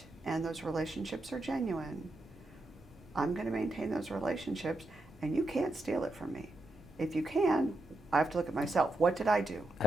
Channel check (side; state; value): both; normal; correlation 0.85